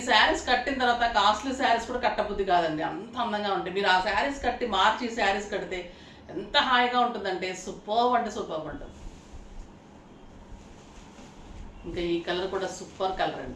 శారీస్ కట్టిన తర్వాత కాస్ట్లీ శారీస్ కూడా కట్టబుద్ధి కాదండి, అంత అందంగా ఉంటాయి. మీరు ఆ శారీస్ కట్టి మార్చి ఈ శారీస్ కడితే ఎంత హాయిగా ఉంటుందంటే సూపర్ అంటే సూపర్ ఉంటుంది. ఇంకా ఈ కలర్ కూడా సూపర్ కలర్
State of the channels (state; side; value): identical; both; correlation 1.00